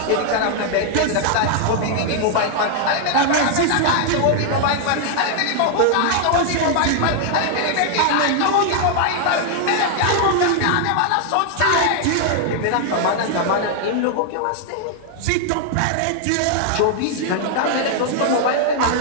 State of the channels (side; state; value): both; different; correlation 0.00